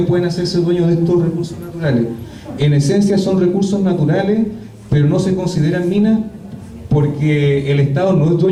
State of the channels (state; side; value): identical; both; correlation 1.00